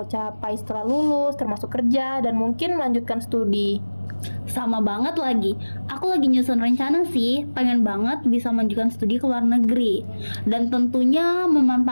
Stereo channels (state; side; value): inverted; both; correlation -1.00